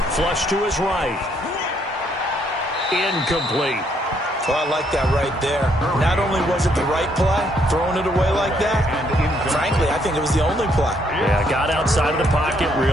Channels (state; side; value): normal; both; correlation 0.70